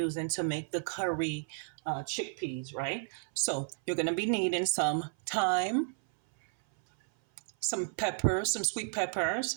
to make the curry chickpeas, right? So you're going to be needing some thyme, some peppers, some sweet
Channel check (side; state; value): left; silent; 56 dB below the other